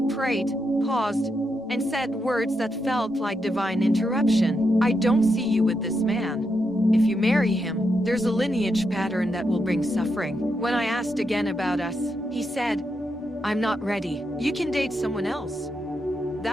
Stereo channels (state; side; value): normal; both; correlation 0.83